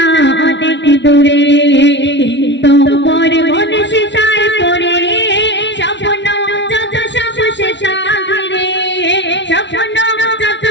অনেক দূরে। কিন্তু মোর মন সেটাই পড়ে স্বপ্ন যত সব সেটা ঘিরে, স্বপ্ন যত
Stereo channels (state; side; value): late; right; 0.51 ms